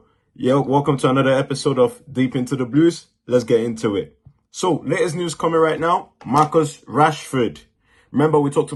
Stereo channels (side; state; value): both; identical; correlation 1.00